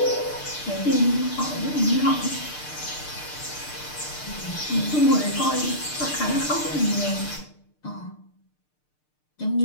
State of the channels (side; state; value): right; late; 6.6 ms